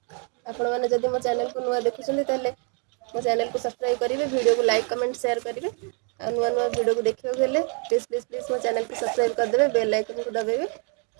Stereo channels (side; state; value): left; quieter; 38.3 dB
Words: आपण माने जदि मो चैनल को नुआ देखुछन ताले मो चैनल को सब्सक्राइब करिवे, वीडियो को लाइक कमेंट शेयर करिवे। आ नुआ नुआ वीडियो को देखियो गेले प्लीज प्लीज प्लीज मो चैनल को सब्सक्राइब कर देबे, बेल आइकन को दबाइबे।